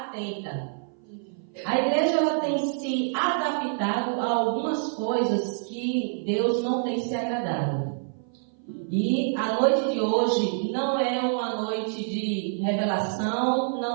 A igreja, ela tem se adaptado a algumas coisas que Deus não tem se agradado. E a noite de hoje não é uma noite de revelação,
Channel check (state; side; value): silent; left; 57 dB below the other